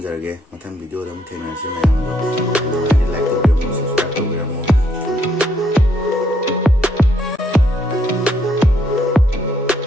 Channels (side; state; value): both; normal; correlation 0.71